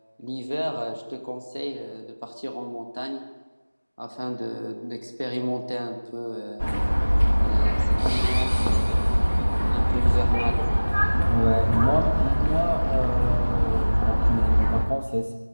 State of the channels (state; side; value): inverted; both; correlation -1.00